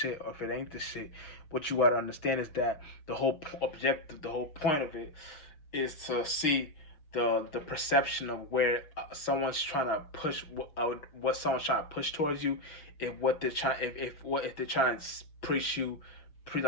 or if it ain't the shit. What you got to understand is that the whole objective, the whole point of it is to see the perception of where someone's trying to push what someone's trying to push towards you. If what they're trying if they're trying to preach you,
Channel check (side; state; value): right; late; 6.4 ms